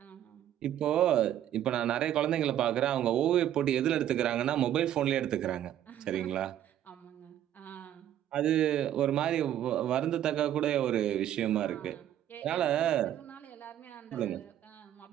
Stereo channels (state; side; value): quieter; left; 11.4 dB